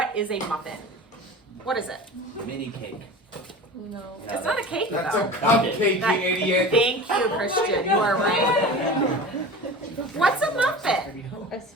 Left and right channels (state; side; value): normal; both; correlation 0.35